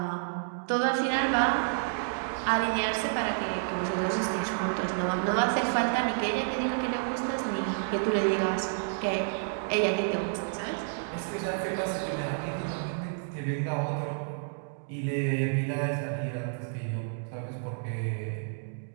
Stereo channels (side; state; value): left; silent; digital silence